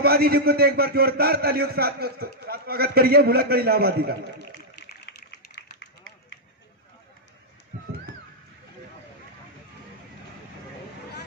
जी को, तो एक बार जोरदार तालियों के साथ स्वागत करिए भुलक्कड़ इलाहाबादी का।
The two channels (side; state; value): both; normal; correlation -0.06